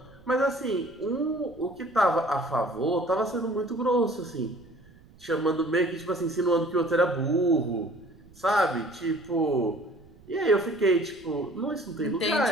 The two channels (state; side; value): noise; right; rumble, 25 dB below the sound